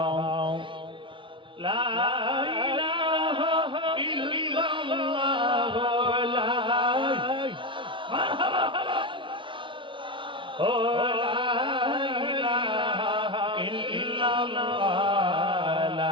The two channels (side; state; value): left; late; 0.24 ms